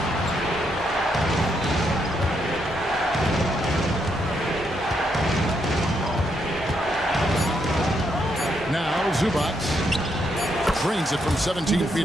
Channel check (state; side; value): normal; both; correlation 0.77